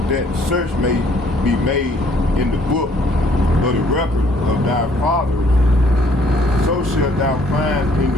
that search may be made in the book of the record of thy fathers. So shalt thou find in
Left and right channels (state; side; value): normal; both; correlation 0.62